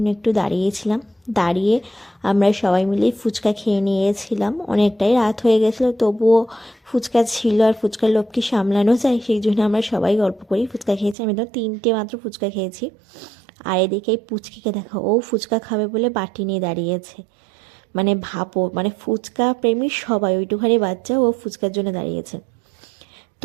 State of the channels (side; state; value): left; drops out; at 11.2 s